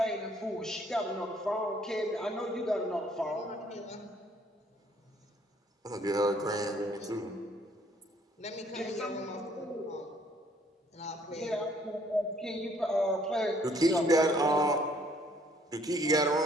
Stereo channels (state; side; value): normal; both; correlation 0.62